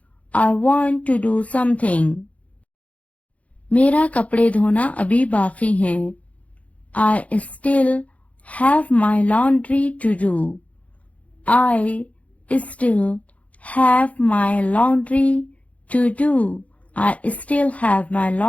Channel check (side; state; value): right; late; 0.066 ms